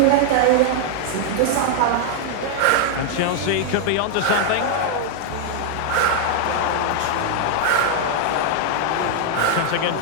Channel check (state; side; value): different; both; correlation -0.01